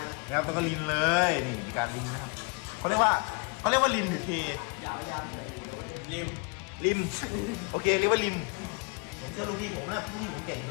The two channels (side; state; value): right; quieter; 33.3 dB